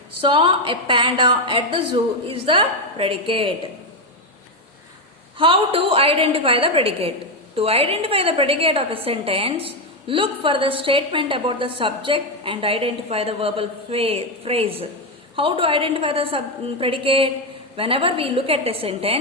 Saw a panda at the zoo is the predicate. How to identify the predicate? To identify the predicate of a sentence, look for the statement about the subject and identify the verbal phrase. How to identify the predicate? Whenever we look at a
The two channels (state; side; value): normal; both; correlation 0.07